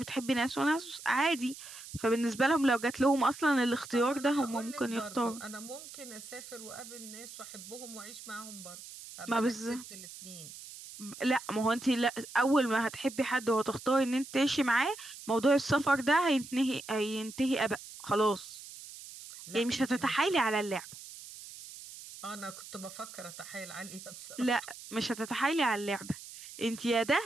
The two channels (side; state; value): right; noise; hiss, 14 dB below the sound